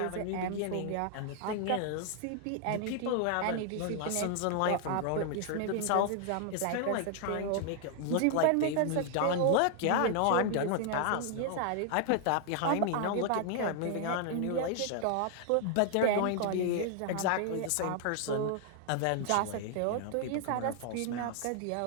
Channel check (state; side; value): different; both; correlation 0.00